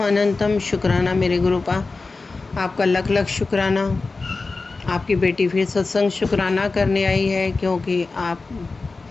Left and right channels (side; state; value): right; quieter; 3.8 dB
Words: अनंतम शुक्राना मेरे गुरुपा। आपका लख लख शुक्राना। आपकी बेटी फिर सत्संग शुक्राना करने आई है क्योंकि